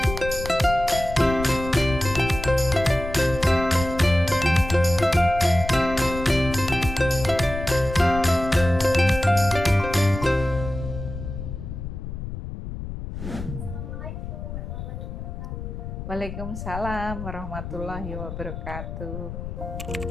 Waalaikumsalam warahmatullahi wabarakatuh.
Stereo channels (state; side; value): noise; left; rumble, 8 dB below the sound